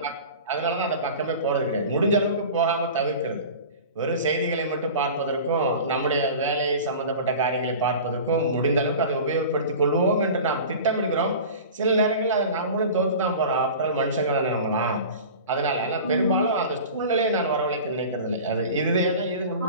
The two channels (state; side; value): inverted; both; correlation -0.37